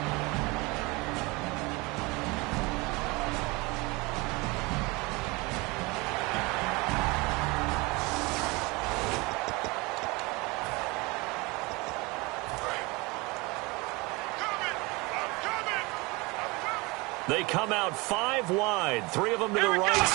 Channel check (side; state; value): left; quieter; 25.1 dB